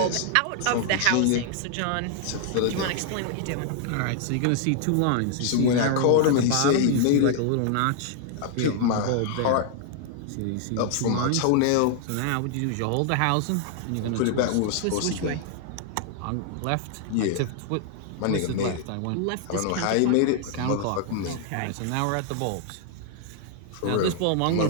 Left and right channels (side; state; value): both; different; correlation 0.00